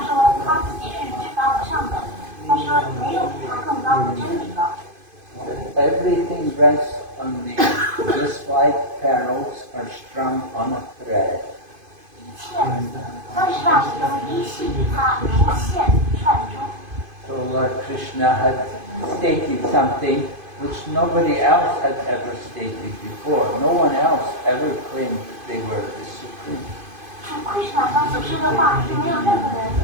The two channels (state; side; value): late; left; 2.5 ms